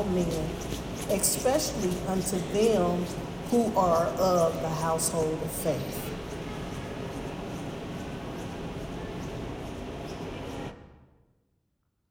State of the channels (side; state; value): both; identical; correlation 1.00